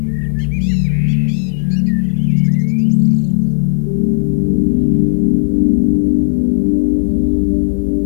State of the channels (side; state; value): right; silent; digital silence